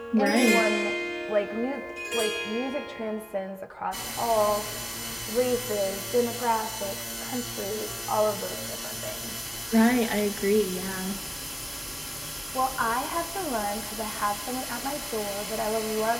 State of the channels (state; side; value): identical; both; correlation 1.00